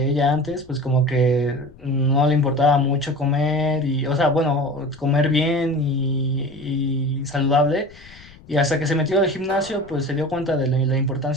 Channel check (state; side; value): noise; left; rumble, 23 dB below the sound